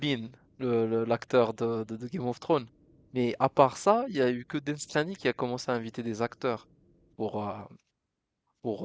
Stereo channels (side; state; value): both; identical; correlation 1.00